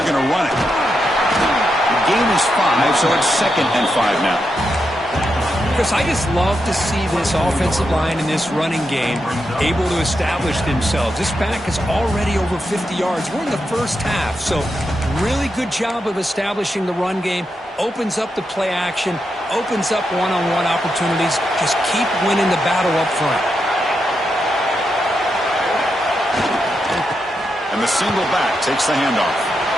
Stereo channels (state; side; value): normal; both; correlation 0.85